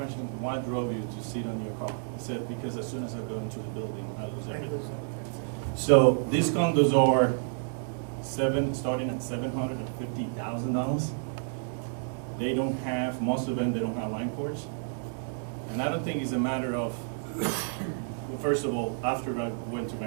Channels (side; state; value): left; silent; digital silence